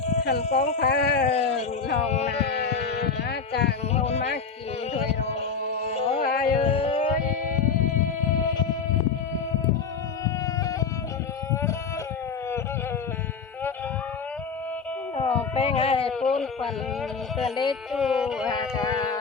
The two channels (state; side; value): quieter; right; 5.5 dB